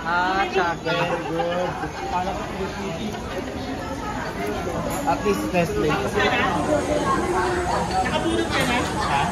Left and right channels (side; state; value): both; identical; correlation 1.00